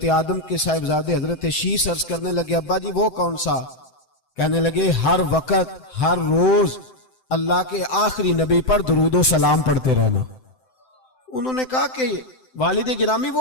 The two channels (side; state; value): right; late; 7.8 ms